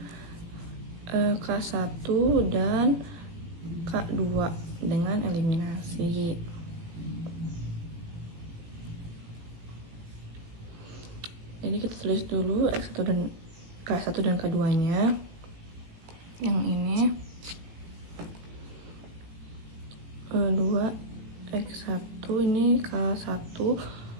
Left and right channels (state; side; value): late; left; 18 ms